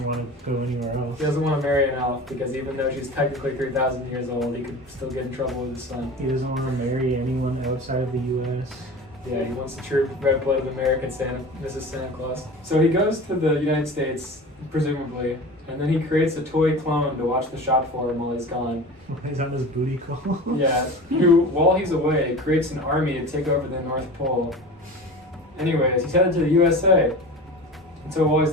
want to go anywhere else. He doesn't want to marry an elf because even though she's technically 3,000 years old, he could still get in trouble with his son. He doesn't want to marry anyone outside of the U.S. Yeah, he wants the true red-blooded American Santa, Mrs. Santa Claus. So he goes to the United States, presumably, and then he creates a toy clone to watch the shop for him while he's gone. He's on his booty call. Yeah, who, while he's away, creates an army to take over the North Pole. Anyways, he's headed to the USA. And so while he's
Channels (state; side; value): normal; both; correlation 0.34